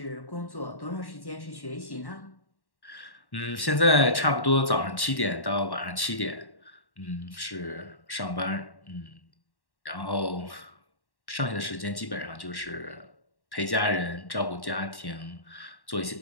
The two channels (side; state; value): right; late; 1.1 ms